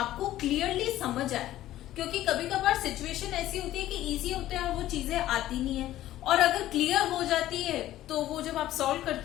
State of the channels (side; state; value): right; quieter; 14.1 dB